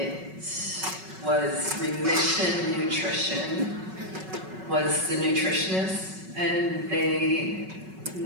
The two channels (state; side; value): late; left; 5.3 ms